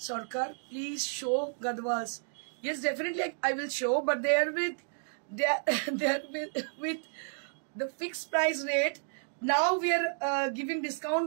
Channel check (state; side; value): silent; left; digital silence